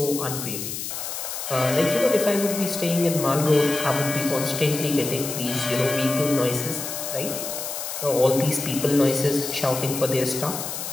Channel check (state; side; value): noise; left; hiss, 6 dB below the sound